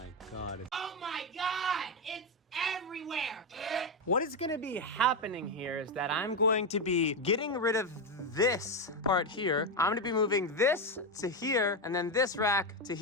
God. Oh my God, it's everywhere. What is gonna be happening here is that I'm going to be getting rid of this part here. I'm gonna be moving this to here and then this rack to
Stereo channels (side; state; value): both; normal; correlation 0.08